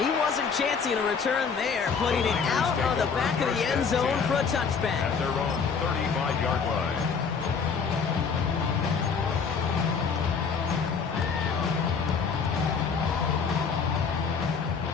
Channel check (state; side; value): quieter; right; 5.7 dB